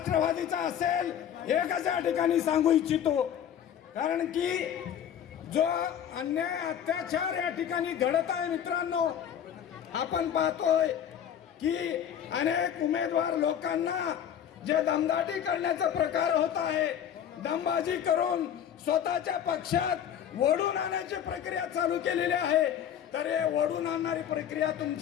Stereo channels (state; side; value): quieter; right; 9.4 dB